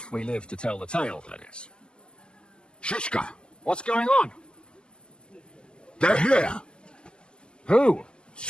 we live to tell the tale, that is. Shishka, What's going on? they're here. Who?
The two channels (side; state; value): right; late; 0.048 ms